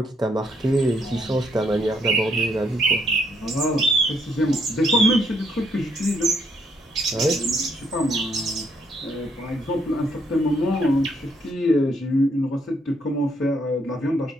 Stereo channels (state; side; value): normal; both; correlation 0.72